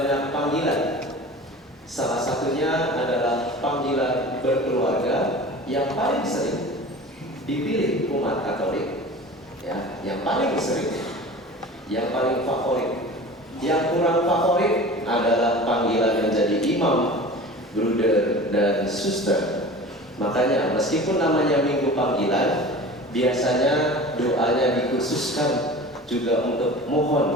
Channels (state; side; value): normal; both; correlation 0.38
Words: panggilan. Salah satunya adalah panggilan berkeluarga yang paling sering dipilih umat Katolik. Ya, yang paling sering, yang paling favorit. Yang kurang favorit adalah panggilan menjadi imam, bruder, dan suster. Makanya meskipun namanya Minggu Panggilan, biasanya doanya dikhususkan juga untuk